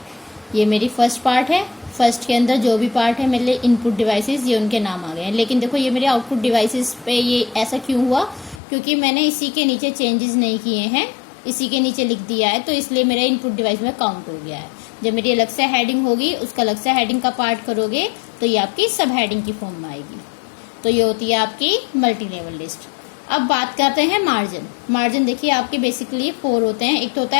ये मेरी फर्स्ट पार्ट है। फर्स्ट के अंदर जो भी पार्ट है मेरे लिए इनपुट डिवाइसेस, ये उनके नाम आ गए हैं। लेकिन देखो ये मेरे आउटपुट डिवाइसेस पे ये ऐसा क्यों हुआ, क्योंकि मैंने इसी के नीचे चेंजेस नहीं किए हैं, इसी के नीचे लिख दिया है, तो इसलिए मेरा इनपुट डिवाइस में काउंट हो गया है। जब मेरी अलग से हेडिंग होगी, उसका अलग से हेडिंग का पार्ट करोगे तो ये आपकी सब हेडिंग की फॉर्म में आएगी। तो ये होती है आपकी मल्टी लेवल लिस्ट। अब बात करते हैं मार्जिन। मार्जिन देखिए आपके बेसिकली 4 होते हैं। एक तो होता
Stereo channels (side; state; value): right; drops out; at 8.6 s